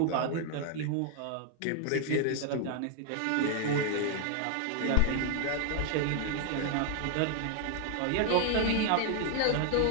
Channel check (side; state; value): both; different; correlation 0.00